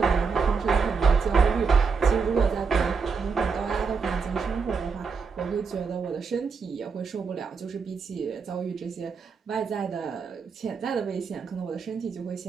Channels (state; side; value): quieter; left; 5.3 dB